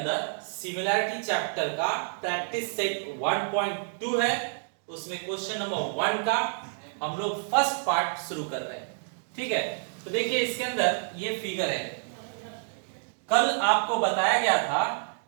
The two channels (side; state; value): left; silent; digital silence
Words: सिमिलैरिटी चैप्टर का प्रैक्टिस सेट 1.2 है। उसमें क्वेश्चन नंबर 1 का हम लोग फर्स्ट पार्ट शुरू कर रहे हैं। ठीक है, तो देखिए इसके अंदर ये फिगर है। कल आपको बताया गया था